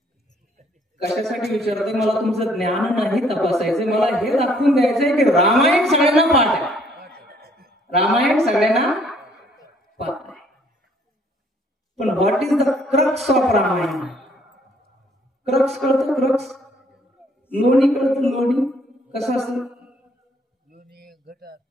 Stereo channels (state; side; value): normal; both; correlation 0.64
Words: कशासाठी विचारते? मला तुमचं ज्ञान नाही तपासायचं. मला हे दाखवून द्यायचंय की रामायण सगळ्यांना पाठ आहे. रामायण सगळ्यांना पाठ आहे. पण what is the crux of Ramayana? Crux कळतं? क्रक्स. लोणी कळतं? लोणी कसं असतं?